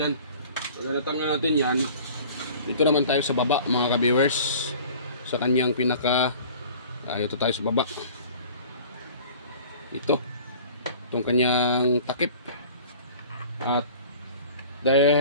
So natanggal natin yan. Dito naman tayo sa baba mga ka-viewers, sa kanyang pinaka ito tayo sa baba. itong kanyang takip. At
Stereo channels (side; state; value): both; inverted; correlation -0.45